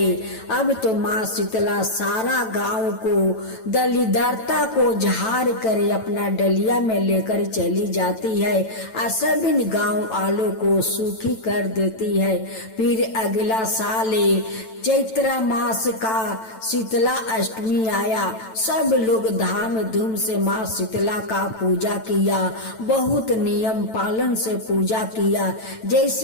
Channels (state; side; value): late; right; 9.0 ms